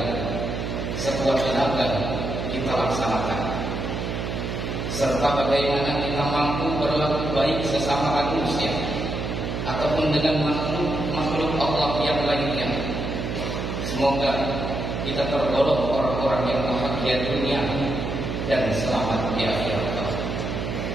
sekuat tenaga kita laksanakan. Serta bagaimana kita mampu berlaku baik sesama manusia ataupun dengan makhluk Allah yang lainnya. Semoga kita tergolong orang-orang yang bahagia dunia dan selamat di akhirat.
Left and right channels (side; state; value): right; noise; hum, 3 dB below the sound